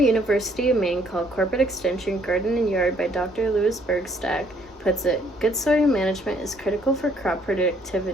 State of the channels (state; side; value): normal; both; correlation 0.65